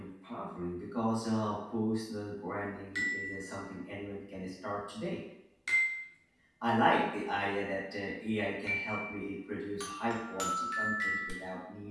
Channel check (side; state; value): both; identical; correlation 1.00